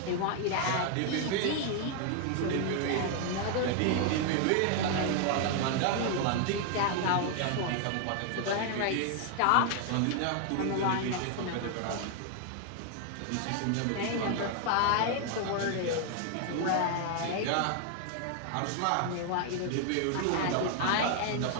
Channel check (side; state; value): both; different; correlation 0.00